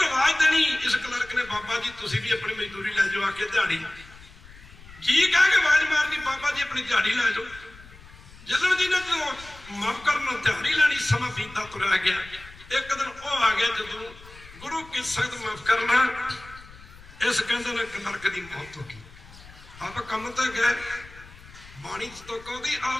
ਆਵਾਜ਼ ਦੇਣੀ। ਇਸ ਕਲਰਕ ਨੇ ਬਾਬਾ ਜੀ ਤੁਸੀਂ ਵੀ ਆਪਣੀ ਮਜ਼ਦੂਰੀ ਲੈ ਜਾਓ, ਆ ਕੇ ਦਿਹਾੜੀ ਜੀ ਕਹਿ ਕੇ ਆਵਾਜ਼ ਮਾਰਨੀ, ਬਾਬਾ ਜੀ ਆਪਣੀ ਦਿਹਾੜੀ ਲੈ ਜਾਓ। ਚੱਲਣ ਜੀ ਨੇ ਜਦੋਂ ਮਾਫ ਕਰਨ ਦਿਹਾੜੀ ਲੈਣੀ, ਸਮਾਂ ਬੀਤਦਾ ਤੁਰਿਆ ਗਿਆ। ਇੱਕ ਦਿਨ ਉਹ ਆ ਗਿਆ ਜਦੋਂ गुरु की संगत माफ करना, इस कहते ने नरक की मौत होगी। आप कम तो गए, बाणी तो कहती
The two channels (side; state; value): left; noise; rumble, 20 dB below the sound